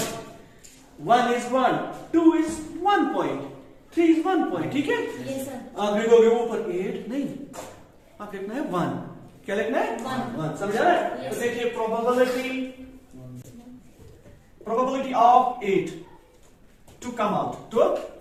1 is 1, 2 is 1 point, 3 is 1 point। ठीक है, यस सर। आप लिखोगे ऊपर 8 नहीं, आप लिखना है 1। क्या लिखना है, 1। समझा रहे हैं। तो देखिए probability of 8 to come out,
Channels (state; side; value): identical; both; correlation 1.00